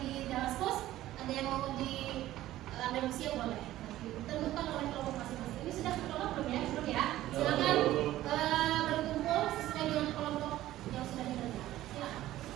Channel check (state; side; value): quieter; left; 14.7 dB